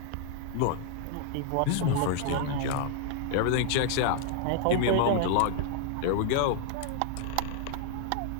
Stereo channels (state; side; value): different; both; correlation 0.00